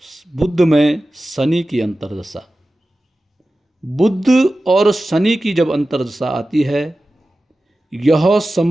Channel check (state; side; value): normal; both; correlation 0.95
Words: बुध में शनि की अंतर्दशा। बुध और शनि की जब अंतर्दशा आती है, यह